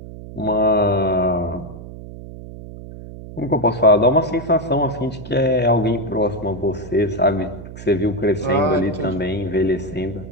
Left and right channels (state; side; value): noise; right; hum, 13 dB below the sound